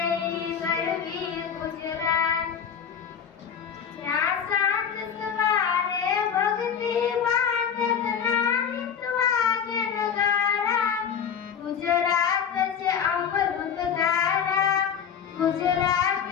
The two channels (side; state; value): right; quieter; 7.7 dB